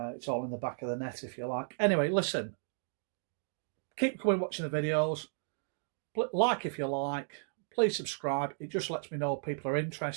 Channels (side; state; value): left; silent; digital silence